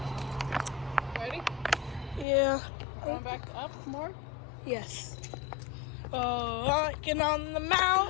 Ready? yeah. Going back up more? Yes. Hiking on the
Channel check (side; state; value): right; drops out; at 2.2 s